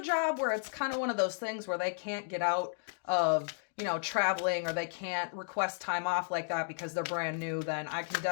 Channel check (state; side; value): silent; right; digital silence